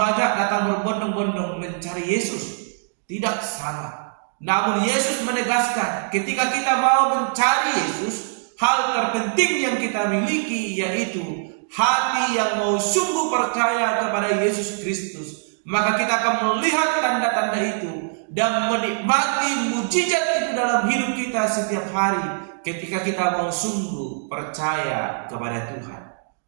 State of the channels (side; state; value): left; silent; digital silence